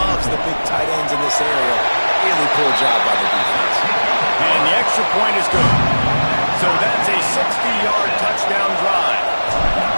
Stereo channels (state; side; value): inverted; both; correlation -1.00